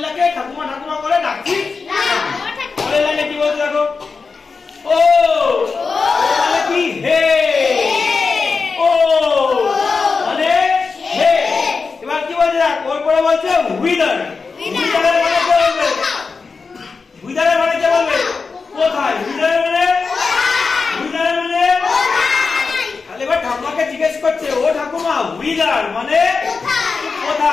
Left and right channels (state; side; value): quieter; right; 4.7 dB